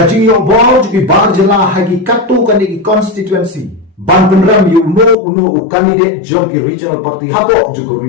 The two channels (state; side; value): drops out; right; at 5.2 s